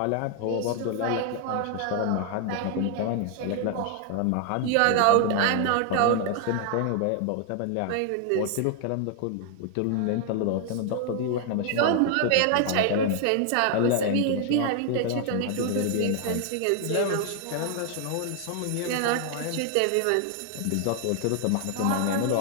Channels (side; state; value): both; different; correlation 0.00